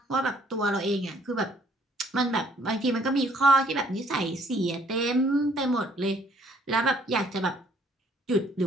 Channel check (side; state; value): both; normal; correlation 0.63